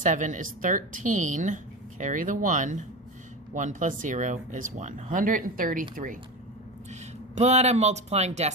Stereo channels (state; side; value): normal; both; correlation 0.24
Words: is 13. Carry the 1. 1 plus 0 is 1. 133. But I'm multiplying